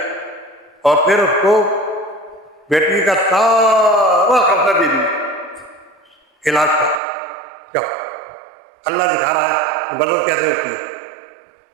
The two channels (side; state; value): left; drops out; at 7.0 s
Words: اور پھر اس کو بیٹی کا سارا خرچہ دے دیا علاج کا۔ کیا اللہ دکھا رہا ہے مدد کیسے ہوتی ہے۔